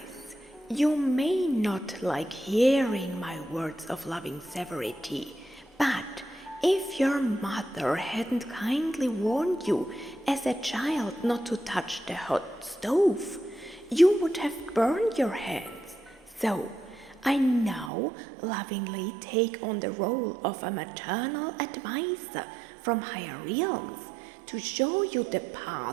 you may not like hearing my words of loving severity, but if your mother hadn't kindly warned you as a child not to touch the hot stove, you would have burned your hands. So, I now lovingly take on the role of a maternal advisor from higher realms to show you the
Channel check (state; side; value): drops out; left; at 17.9 s